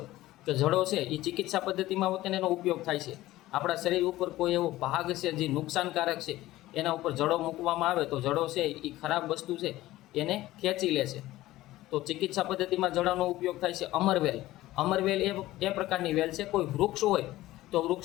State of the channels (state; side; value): quieter; right; 16.4 dB